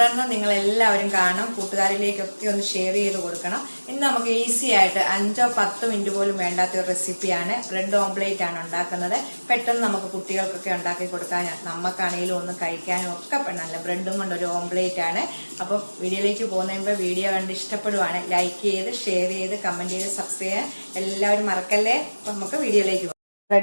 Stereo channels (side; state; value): both; inverted; correlation -1.00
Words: നിങ്ങൾ എല്ലാവരും കാണും, കൂട്ടുകാരിലേക്കൊക്കെ ഒന്ന് ഷെയർ ചെയ്ത് കൊടുക്കണം. ഇന്ന് നമുക്ക് ഈസി ആയിട്ട് 5-10 മിനിറ്റ് പോലും വേണ്ടാത്ത ഒരു റെസിപ്പിയാണ്. ബ്രെഡ് ഓംപ്ലേറ്റ് ആണ് ഉണ്ടാക്കുന്നത്. പെട്ടെന്ന് നമുക്ക് കുട്ടികൾക്കൊക്കെ ഉണ്ടാക്കി കൊടുക്കാൻ, നമുക്കാണെങ്കിലും ഒന്ന് കഴിക്കാനും ഒക്കെ നല്ല ബ്രെഡും കൊണ്ട് ഒരു ഓംപ്ലേറ്റ് ആണ്. അപ്പം വീഡിയോയിലേക്ക് പോകുന്നതിന് വീഡിയോ കണ്ട് ഇഷ്ടപ്പെടുവാണ് ലൈക്ക് ചെയ്ത്, ഷെയർ ചെയ്ത്, കമന്റ് ചെയ്ത്, സബ്സ്ക്രൈബ് ചെയ്യാൻ എല്ലാവരും മറക്കല്ലേ. അപ്പം നമുക്ക് വീഡിയോയിലേക്ക് പോകാം.